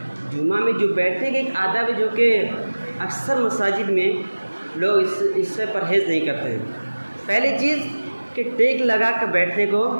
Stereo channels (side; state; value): both; inverted; correlation -1.00